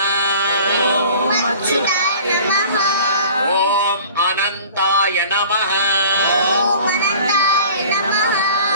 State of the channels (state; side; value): inverted; both; correlation -0.45